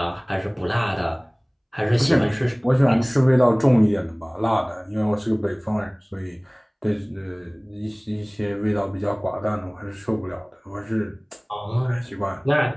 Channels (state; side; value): identical; both; correlation 1.00